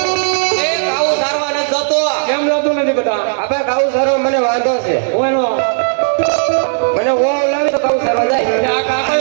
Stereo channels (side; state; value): left; silent; digital silence